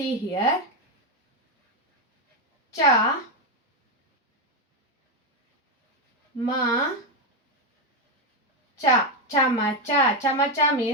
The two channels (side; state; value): both; normal; correlation 0.06